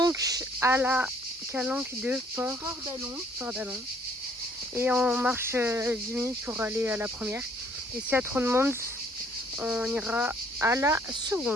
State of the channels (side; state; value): both; normal; correlation 0.62